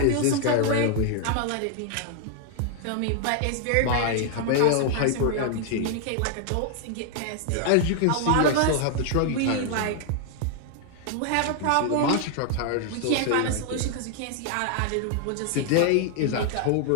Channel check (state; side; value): different; both; correlation 0.00